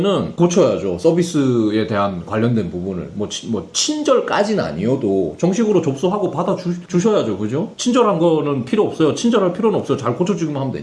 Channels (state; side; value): identical; both; correlation 1.00